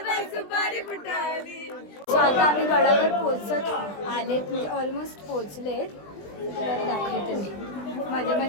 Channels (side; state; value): right; late; 20 ms